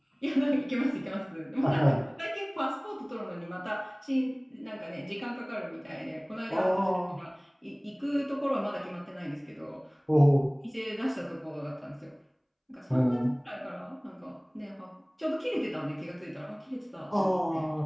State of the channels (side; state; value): both; identical; correlation 1.00